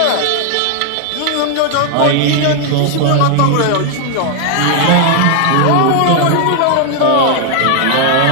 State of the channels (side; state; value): both; different; correlation 0.00